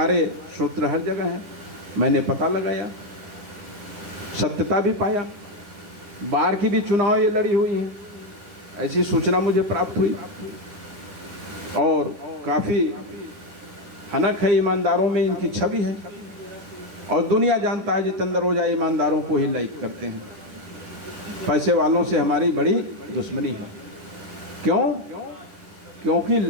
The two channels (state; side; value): late; left; 10 ms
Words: सूत्र हर जगह हैं। मैंने पता लगाया, सत्यता भी पाया, बाहर की भी चुनाव ये लड़ी हुई हैं, ऐसी सूचना मुझे प्राप्त हुई। और काफ़ी हनक है, ईमानदारों में इनकी छवि है, और दुनिया जानता है जितेंद्र ओझा ईमानदारों को ही लाइक करते हैं। पैसे वालों से हमारी बड़ी दुश्मनी है। क्यों? क्योंकि